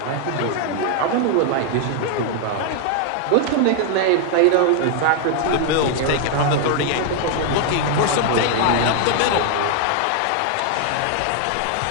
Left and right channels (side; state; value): both; different; correlation 0.00